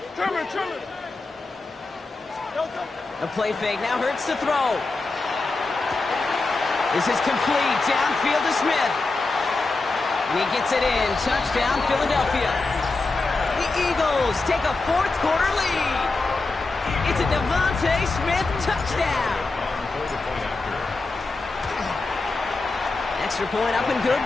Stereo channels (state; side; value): quieter; right; 3.6 dB